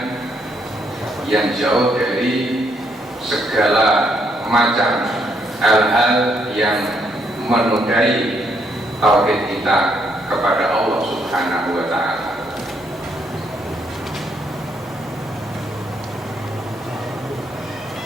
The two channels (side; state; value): both; normal; correlation 0.73